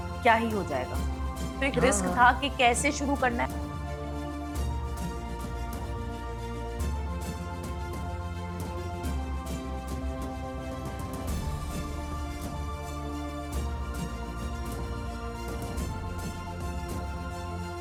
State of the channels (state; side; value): identical; both; correlation 1.00